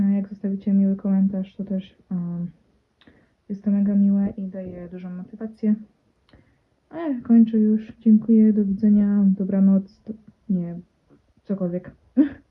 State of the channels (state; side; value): identical; both; correlation 1.00